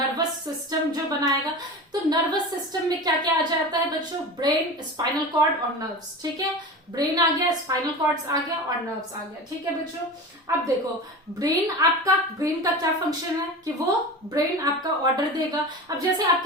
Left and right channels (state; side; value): normal; both; correlation 0.30